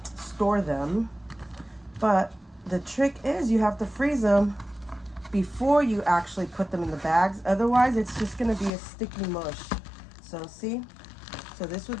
store them. But the trick is you have to freeze them before you actually put them in the bags. Otherwise, it's just gonna be a sticky mush. So see, so this would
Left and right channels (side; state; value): right; drops out; at 8.7 s